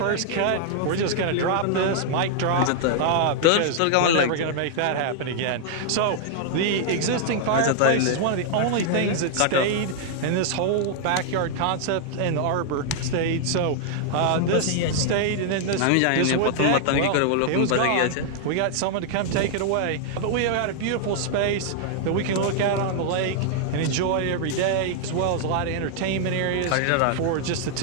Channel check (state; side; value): different; both; correlation -0.01